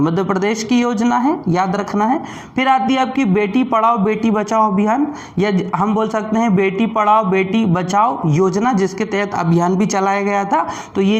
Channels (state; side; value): identical; both; correlation 1.00